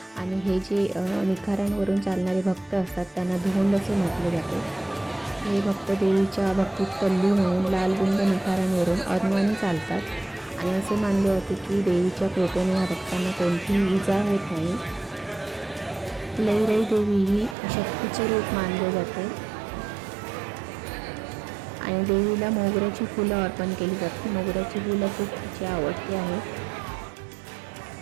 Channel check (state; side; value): drops out; left; at 17.6 s